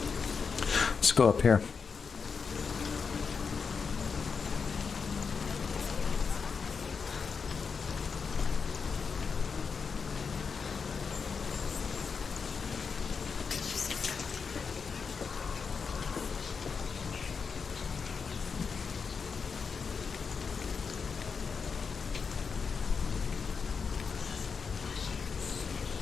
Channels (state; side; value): quieter; right; 5.6 dB